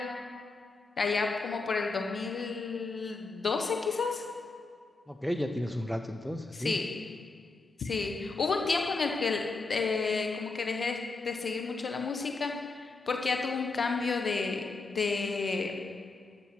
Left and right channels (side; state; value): right; quieter; 3.7 dB